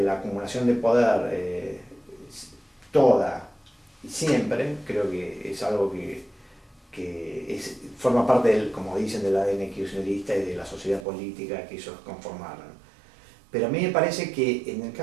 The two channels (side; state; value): left; drops out; at 11.1 s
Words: la acumulación de poder toda y siempre, creo que es algo que forma parte como dicen, del ADN kirchnerista y de la sociedad política que ellos conformaron. Pero a mí me parece que en el